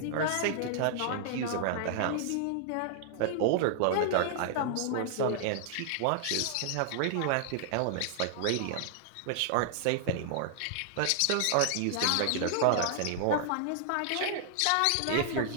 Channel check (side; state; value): both; different; correlation -0.01